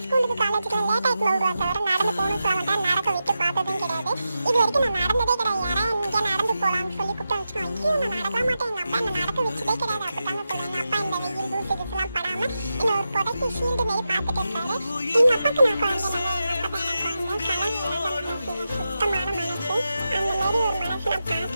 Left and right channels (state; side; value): inverted; both; correlation -0.90